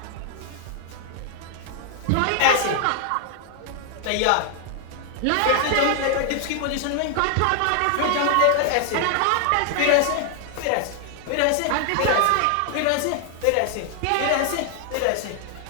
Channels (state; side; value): different; both; correlation 0.00